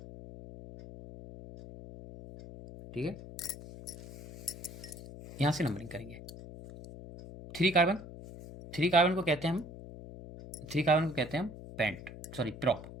ठीक है, यहाँ से नंबरिंग करेंगे। 3 कार्बन को कहते हैं हम, 3 कार्बन को कहते हैं हम पेंट, सॉरी प्रॉप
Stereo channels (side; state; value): left; noise; hum, 14 dB below the sound